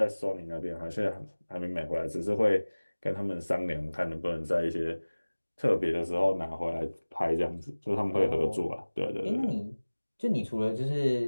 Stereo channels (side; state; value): both; inverted; correlation -1.00